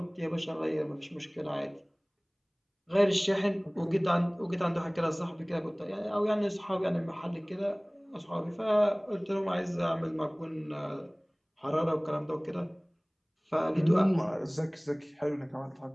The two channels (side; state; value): both; identical; correlation 1.00